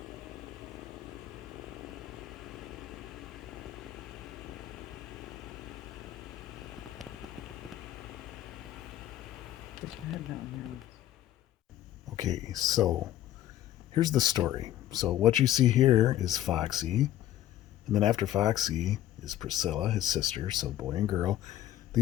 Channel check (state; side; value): quieter; right; 12.7 dB